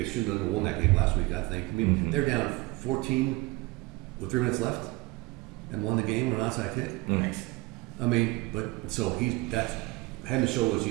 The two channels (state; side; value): quieter; left; 22.2 dB